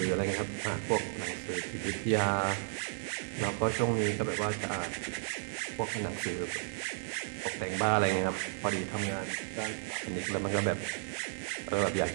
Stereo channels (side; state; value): left; silent; digital silence